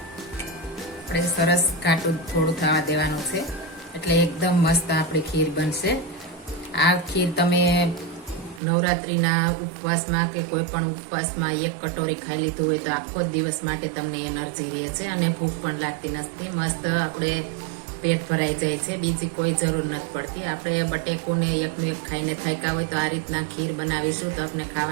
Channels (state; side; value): drops out; left; at 8.6 s